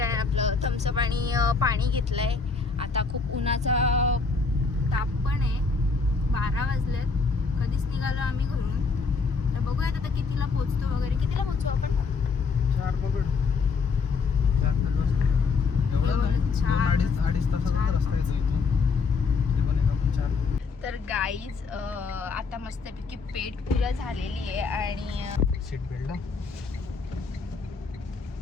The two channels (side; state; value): right; quieter; 4.7 dB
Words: आहे, आपलं थम्सअप आणि पाणी घेतलं आहे. आता खूप उन्हाचा ताप पण आहे. 12 वाजलेत. कधीच निघालो आम्ही घरून. तर बघूयात आता कितीला पोचतो वगैरे. कितीला पोचू आपण? 4 पकड. 4 अडीच तासाचा रस्ता आहे इथून. ते पण एक आपण 4. तर गाईज आता मस्तपैकी पेट पूजा झालेली आहे आणि सीट बेल्ट.